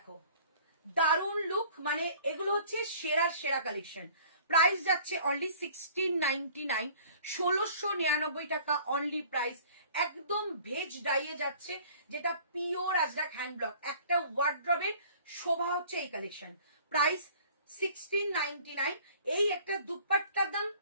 দারুণ লুক, মানে এগুলো হচ্ছে সেরা কালেকশন। প্রাইস যাচ্ছে অনলি 1699, 1699 টাকা অনলি প্রাইস। একদম ভেজ ডাইয়ে যাচ্ছে, যেটা পিওর আজরাক হ্যান্ড ব্লক। একটা ওয়ার্ড্রবের শোভা হচ্ছে এই কালেকশন। প্রাইস 1699। এই একটা দুপাট্টার দাম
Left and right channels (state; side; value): inverted; both; correlation -0.51